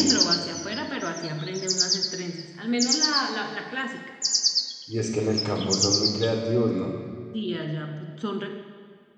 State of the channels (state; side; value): identical; both; correlation 1.00